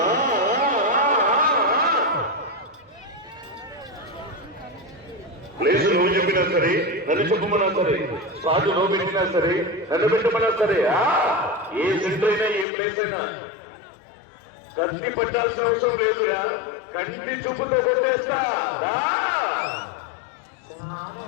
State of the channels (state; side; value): drops out; right; at 12.7 s